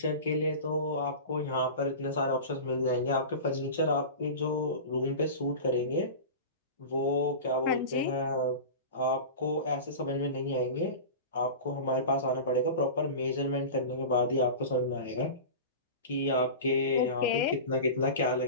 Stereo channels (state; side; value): inverted; both; correlation -0.31